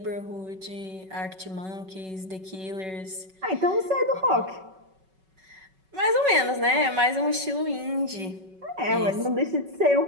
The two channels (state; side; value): late; left; 5.3 ms